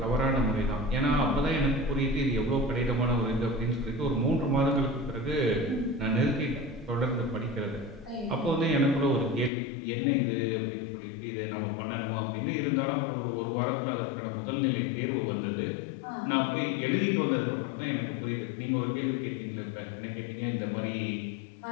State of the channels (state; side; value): drops out; right; at 9.5 s